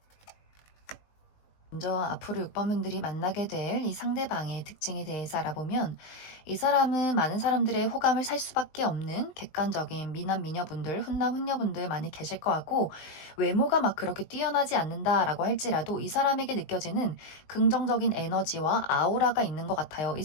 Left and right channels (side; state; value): right; late; 20 ms